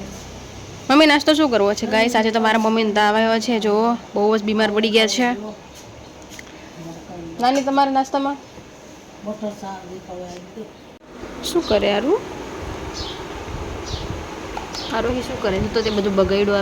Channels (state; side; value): identical; both; correlation 1.00